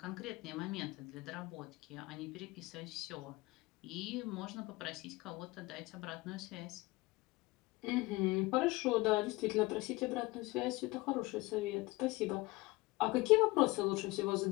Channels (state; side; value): quieter; right; 21.8 dB